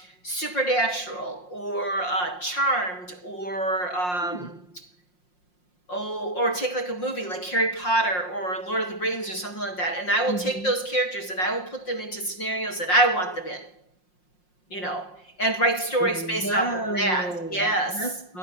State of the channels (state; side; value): late; right; 5.6 ms